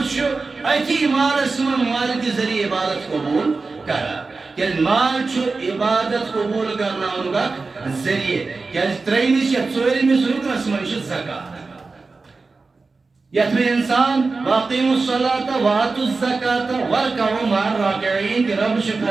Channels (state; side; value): quieter; left; 4.0 dB